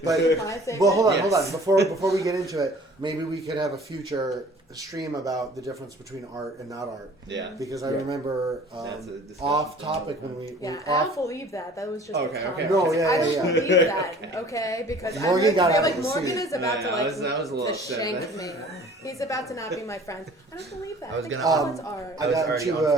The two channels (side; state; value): both; normal; correlation 0.49